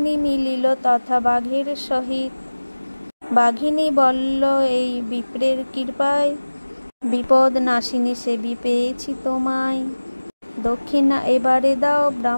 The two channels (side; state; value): both; inverted; correlation -1.00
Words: মিলিল তথা বাঘের সহিত। বাঘিনী বলল এই বিপ্রের কৃপায়, বিপদ নাশিনী সেবী পেয়েছি তোমায়। দক্ষিণা এবারে দাও